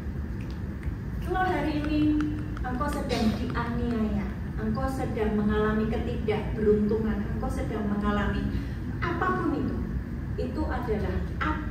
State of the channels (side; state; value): both; identical; correlation 1.00